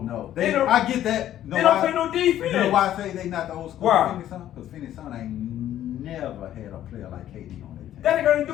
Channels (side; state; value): right; quieter; 12.0 dB